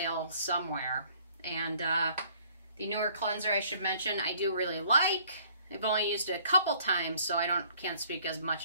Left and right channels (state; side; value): inverted; both; correlation -0.59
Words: somewhere. And the newer cleanser I should mention, I do really like. I've only used it a couple times, so I can't speak as much